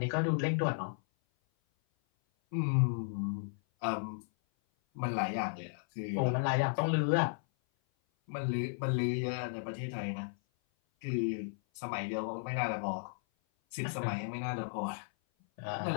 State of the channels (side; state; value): right; silent; 55 dB below the other